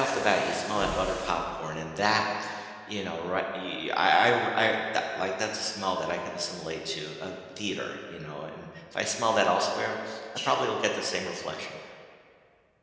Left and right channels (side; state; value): both; identical; correlation 1.00